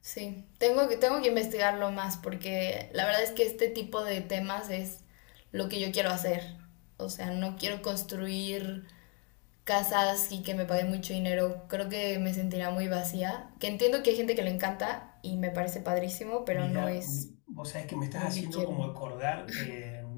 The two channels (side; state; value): right; quieter; 34.8 dB